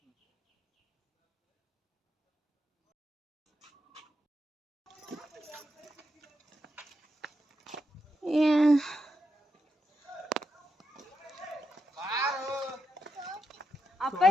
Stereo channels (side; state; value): both; normal; correlation 0.84